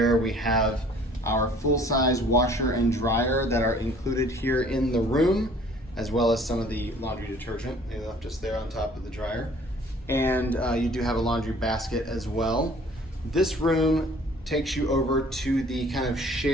We have our full-size washer and dryer that are included here in the room, as well as some of the laundry detergent. They left us there on top of the dryer. And you do have a laundry basket as well. This room takes you over to the kind of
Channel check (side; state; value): both; normal; correlation 0.53